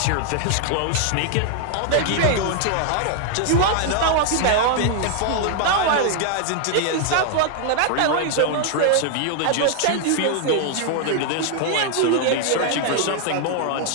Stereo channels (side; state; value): both; different; correlation 0.00